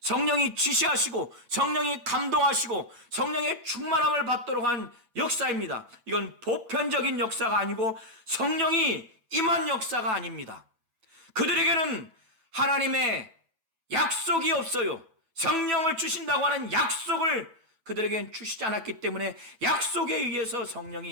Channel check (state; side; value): late; left; 8.3 ms